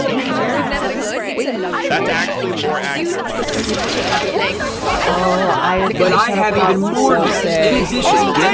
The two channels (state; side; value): identical; both; correlation 1.00